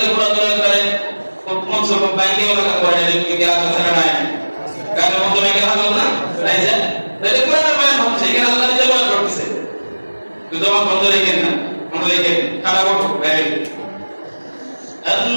করে করে মঞ্চ বাইকে লাগা করে কি আছে না নাই? গানের মঞ্চ নাকি ভালো না তাই যে তাহলে কোরআন বয়ান হচ্ছে এখানে আল্লাহ নিজে বয়ান করতেছে। তো জবান বন্ধ রেখেন না, বন্ধ রেখেন খারাপ হবে বাইরে।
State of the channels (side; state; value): both; inverted; correlation -1.00